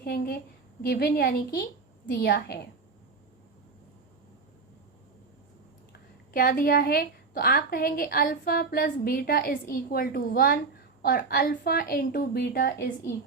गिवन यानी कि दिया है। क्या दिया है? तो आप कहेंगे alpha plus beta is equal to 1 और alpha into beta is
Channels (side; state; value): left; quieter; 4.5 dB